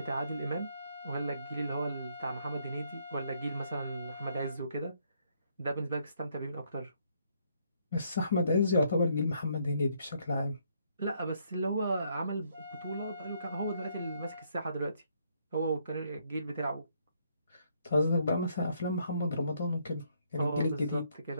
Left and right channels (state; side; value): inverted; both; correlation -0.71